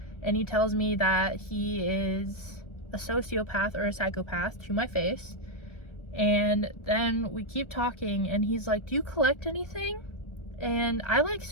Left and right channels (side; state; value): right; late; 1.3 ms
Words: and he tells me that he is a sociopath or a psychopath to my face. And then we keep talking, and he's like, do you collect anything? And I like